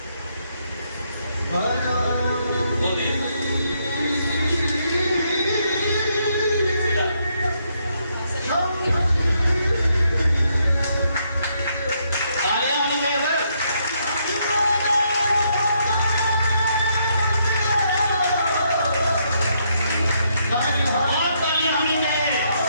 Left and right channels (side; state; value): both; inverted; correlation -0.75